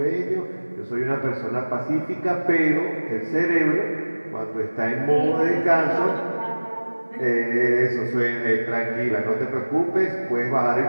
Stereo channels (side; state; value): both; inverted; correlation -1.00